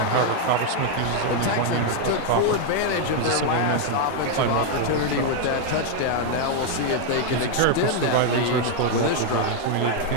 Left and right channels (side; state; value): both; different; correlation 0.01